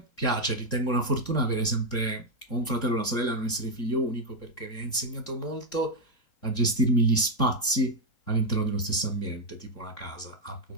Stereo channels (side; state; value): right; late; 3.7 ms